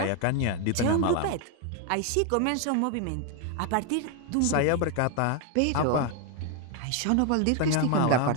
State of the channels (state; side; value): different; both; correlation 0.01